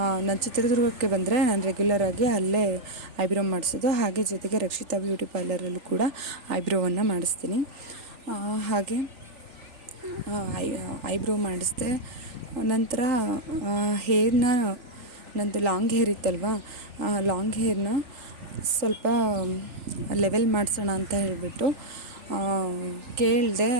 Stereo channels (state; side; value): late; left; 3.4 ms